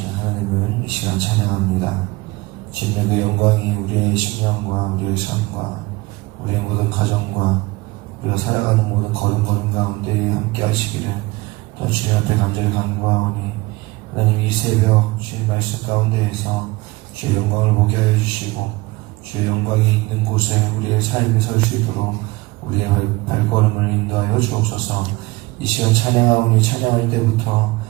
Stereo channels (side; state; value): left; quieter; 21.9 dB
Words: 하나님을 이 시간 찬양합니다. 주님의 그 영광이 우리의 심령과 우리의 삶과 우리의 모든 가정과 우리가 살아가는 모든 걸음 가운데 함께 하시기를 또한 주님 앞에 간절히 간구하오니 하나님 이 새벽 주님 말씀 가운데에서 주의 영광을 보게 하여 주시고 주의 영광이 있는 곳에 우리의 삶이 설 수 있도록 우리의 발걸음을 인도하여 주옵소서. 이 시간 찬양하오니 찬양할 때부터